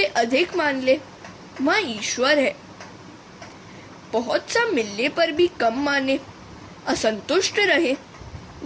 अधिक मान ले, वह ईश्वर है। बहुत सा मिलने पर भी कम माने, असंतुष्ट रहे,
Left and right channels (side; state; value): both; identical; correlation 1.00